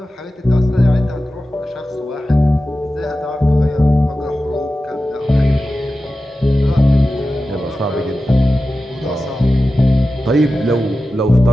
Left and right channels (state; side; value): normal; both; correlation 0.94